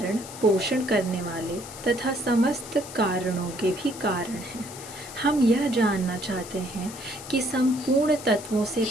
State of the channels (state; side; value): noise; left; hiss, 14 dB below the sound